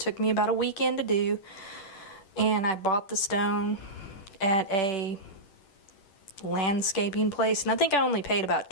me about a weekend to do, and I bought the stone at a landscaping place, and I think I only paid about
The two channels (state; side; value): late; right; 10 ms